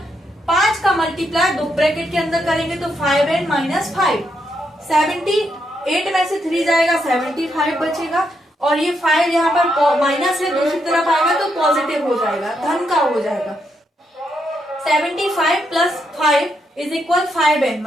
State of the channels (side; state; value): both; normal; correlation 0.79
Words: 5 का मल्टीप्लाई 2 ब्रैकेट के अंदर करेंगे तो 5n माइनस 5। 78 में से 3 जाएगा, 75 बचेगा, और ये 5 यहाँ पर माइनस है, दूसरी तरफ आएगा तो पॉजिटिव हो जाएगा, धन का हो जाएगा। 75 प्लस 5 इज इक्वल 5n,